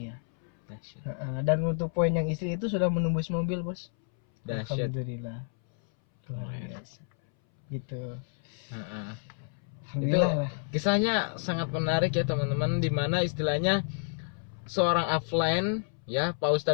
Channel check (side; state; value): right; silent; 58 dB below the other